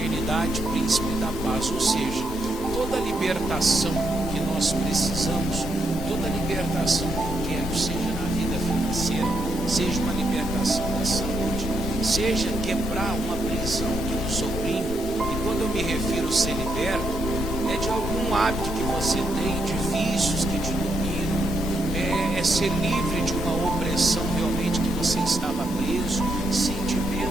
príncipe da paz. Ou seja, toda a libertação que nós precisamos, toda a libertação que eu quero, seja na vida financeira, seja uma libertação da saúde, seja quebrar uma prisão que nos oprime. E quando eu me refiro a ser liberto, é de algum hábito que você tem, de vícios que te dominam, é ser livre de uma opressão realmente que você estava preso,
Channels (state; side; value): normal; both; correlation 0.79